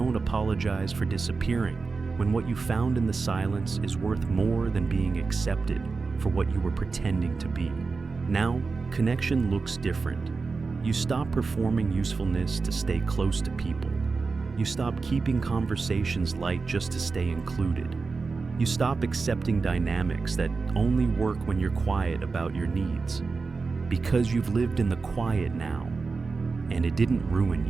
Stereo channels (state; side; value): quieter; left; 4.4 dB